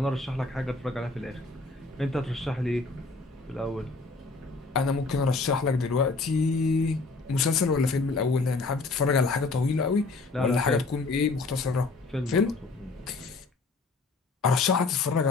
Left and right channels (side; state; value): right; quieter; 3.7 dB